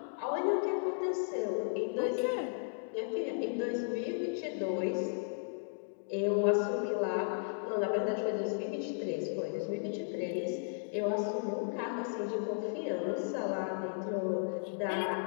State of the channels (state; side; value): silent; right; digital silence